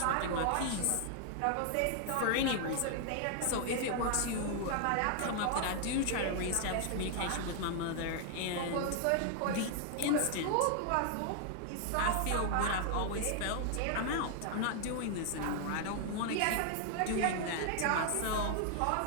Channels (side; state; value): both; different; correlation 0.00